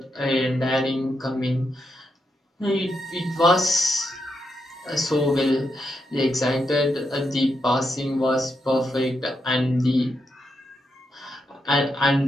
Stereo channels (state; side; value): normal; both; correlation 0.82